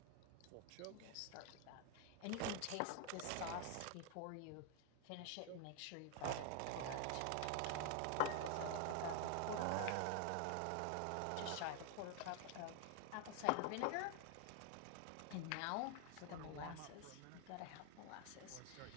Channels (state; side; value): different; both; correlation 0.00